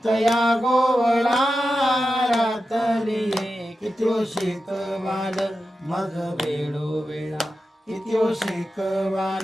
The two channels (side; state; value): both; normal; correlation 0.91